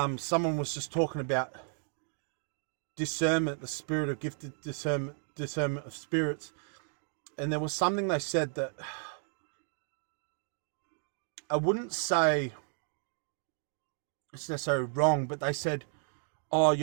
someone was just talking about discernment, the spirit of gifted discernment of spirits. And there was something they said that I wouldn't say it's necessarily wrong, but they said, oh,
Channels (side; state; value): left; silent; 56 dB below the other